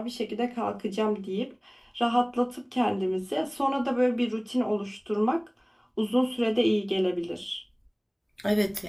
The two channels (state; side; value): identical; both; correlation 1.00